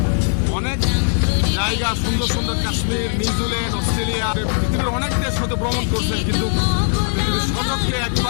অনেক জায়গা সুন্দর সুন্দর, কাশ্মীর, নিউজিল্যান্ড, অস্ট্রেলিয়া, পৃথিবীর অনেক দেশ হয়তো ভ্রমণ করছেন, কিন্তু আপনি যদি সচক্ষে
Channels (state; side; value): silent; right; 65 dB below the other